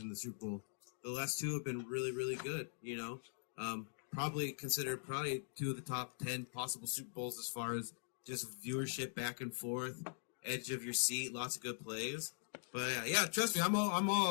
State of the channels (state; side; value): silent; right; digital silence